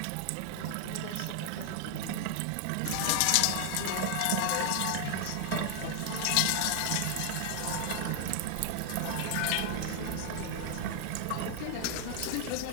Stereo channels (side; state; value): both; different; correlation 0.00